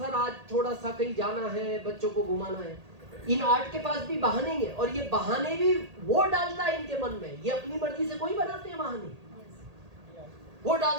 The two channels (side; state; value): left; late; 1.8 ms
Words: आज थोड़ा सा कहीं जाना है, बच्चों को घुमाना है। इन 8 के पास भी बहाने हैं, और ये बहाने भी वो डालता है इनके मन में। ये अपनी मर्जी से कोई बनाते हैं बहाने, वो